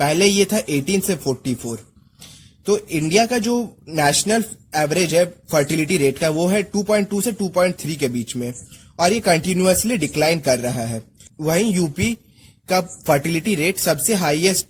ये था 18 से 44। तो इंडिया का जो नेशनल एवरेज है फर्टिलिटी रेट का वो है 2.2 से 2.3 के बीच में और ये कंटिन्यूअसली डिक्लाइन कर रहा है। वहीं यूपी का फर्टिलिटी रेट सबसे हाईएस्ट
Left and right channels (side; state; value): both; identical; correlation 1.00